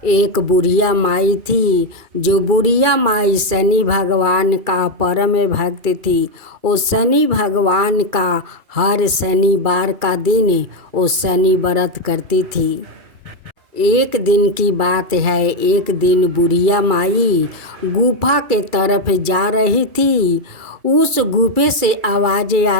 एक बुढ़िया माई थी, जो बुढ़िया माई शनि भगवान का परम भक्त थी। वो शनि भगवान का हर शनिवार का दिन वो शनि व्रत करती थी। एक दिन की बात है, एक दिन बुढ़िया माई गुफा के तरफ जा रही थी। उस गुफे से आवाज़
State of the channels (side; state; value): left; late; 2.4 ms